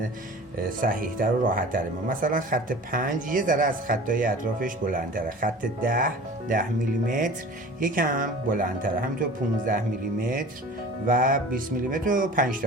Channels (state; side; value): normal; both; correlation 0.41